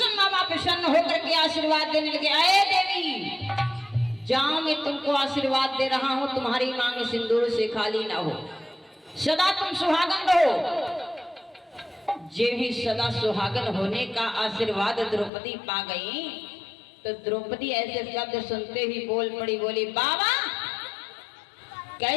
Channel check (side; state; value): right; drops out; at 15.3 s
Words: बाबा प्रसन्न होकर के आशीर्वाद देने लगे। अरे देवी जाओ, मैं तुमको आशीर्वाद दे रहा हूं, तुम्हारी मांग सिंदूर से खाली ना हो, सदा तुम सुहागन रहो। जे ही सदा सुहागन होने का आशीर्वाद द्रौपदी पा गई, तो द्रौपदी ऐसे शब्द सुनते ही बोल पड़ी, बोली बाबा